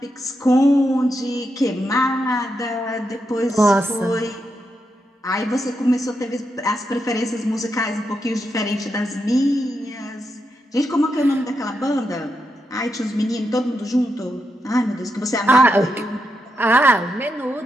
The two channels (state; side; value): normal; both; correlation 0.84